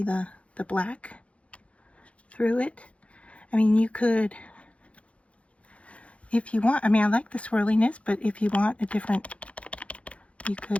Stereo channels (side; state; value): right; late; 0.063 ms